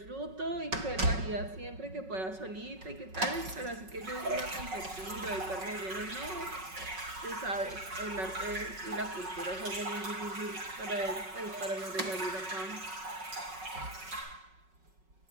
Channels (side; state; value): left; late; 5.4 ms